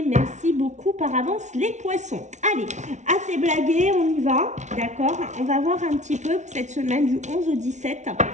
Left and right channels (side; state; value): left; late; 0.34 ms